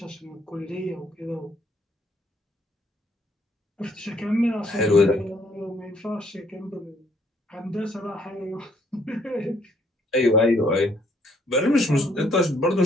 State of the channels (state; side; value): normal; both; correlation 0.66